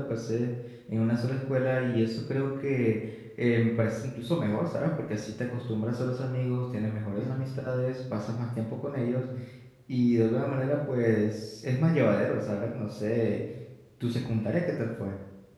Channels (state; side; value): identical; both; correlation 1.00